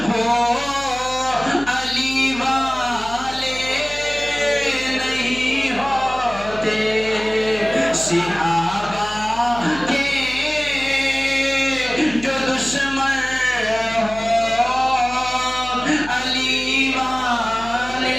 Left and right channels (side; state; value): left; noise; hum, 16 dB below the sound